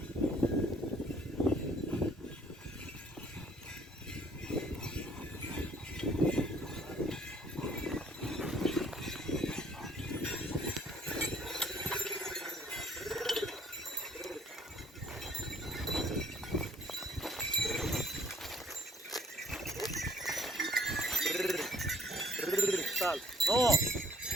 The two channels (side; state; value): both; normal; correlation 0.60